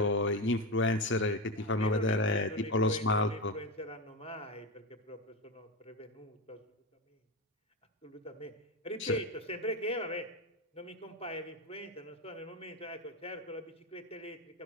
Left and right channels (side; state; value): both; normal; correlation 0.16